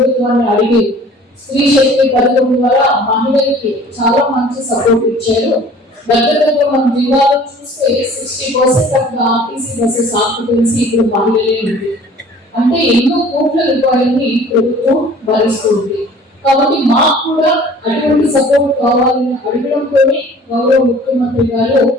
అడిగి స్త్రీ శక్తి పథకం ద్వారా మహిళలకి చాలా మంచి సపోర్ట్ ఇచ్చారు. దగ్గర మన జిల్లాలో చూస్తే 60% ఆఫ్ ఆర్టీసీ బస్సెస్ ఆక్యుపెన్సీ ఇప్పుడు మహిళలే ఉంది. అంటే ఎన్నో కోట్ల రూపాయలని ప్రభుత్వం భరిస్తుంది. కాబట్టి మాకు కూడా అటువంటి సపోర్ట్ కావాలని అడగడంతోనే గౌరవ ముఖ్యమంత్రి గారు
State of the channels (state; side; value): normal; both; correlation 0.49